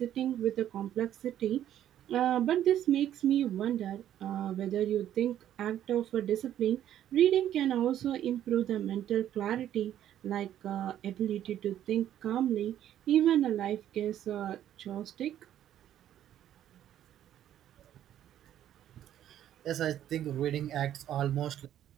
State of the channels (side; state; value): left; quieter; 11.3 dB